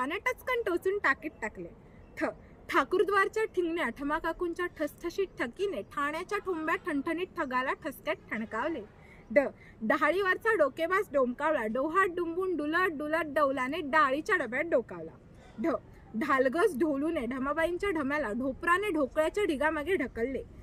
टचकन टोचून टाकीत टाकले। ठ, ठाकूरद्वारच्या ठिंगण्या ठमाकाकूंच्या ठसठशीत ठकीने ठाण्याच्या ठोंब्या ठणठणीत ठगाला ठसक्यात ठणकावले। ड, डहाळीवरचा डोकेबाज डोमकावला डोहात डुंबून डुलत डुलत डौलाने डाळीच्या डब्यात डोकावला। ढ, ढालगस ढोलूने ढमाबाईंच्या ढम्याला ढोपराने ढोकळ्याच्या ढिगामागे ढकलले।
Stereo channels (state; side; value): identical; both; correlation 1.00